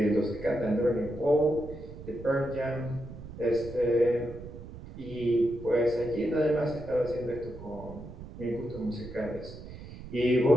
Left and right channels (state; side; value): noise; right; rumble, 14 dB below the sound